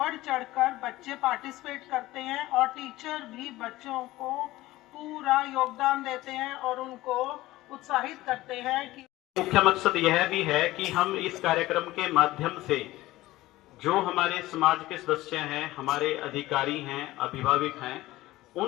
चढ़कर बच्चे पार्टिसिपेट करते हैं और टीचर भी बच्चों को पूरा योगदान देते हैं और उनको उत्साहित करते हैं कि मुख्य मकसद यह भी है कि हम इस कार्यक्रम के माध्यम से जो हमारे समाज के सदस्य हैं, हमारे अधिकारी हैं, अभिभावक हैं,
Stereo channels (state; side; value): quieter; right; 17.4 dB